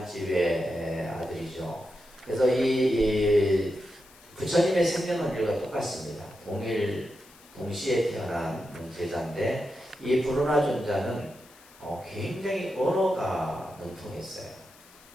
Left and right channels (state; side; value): noise; left; hiss, 24 dB below the sound